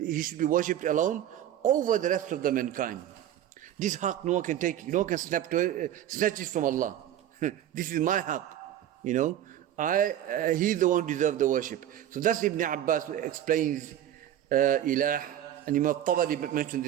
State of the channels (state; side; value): quieter; left; 11.5 dB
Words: should be worshipped alone over the rest of the mankind. This haqq no one can take, no one can snatch it from Allah. This is my haqq, He is the one who deserves the worship. So that's Ibn Abbas explains ilah, and Imam Tabari mentioned